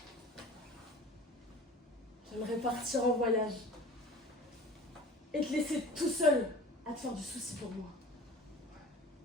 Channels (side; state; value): both; normal; correlation 0.41